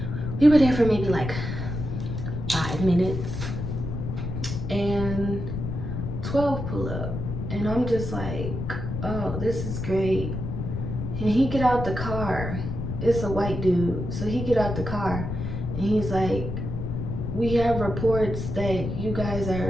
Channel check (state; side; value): noise; left; rumble, 4 dB below the sound